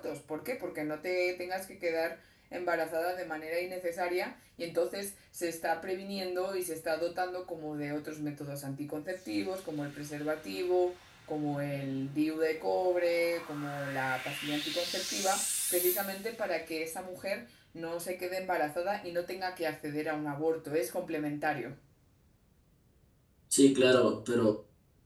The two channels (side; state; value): both; identical; correlation 1.00